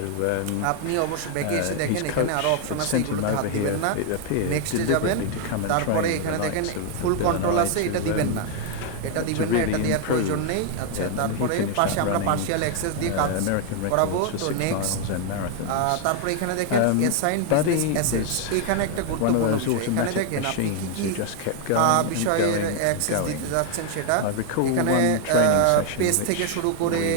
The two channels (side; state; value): both; different; correlation 0.00